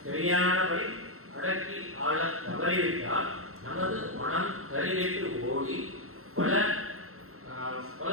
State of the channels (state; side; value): late; left; 0.62 ms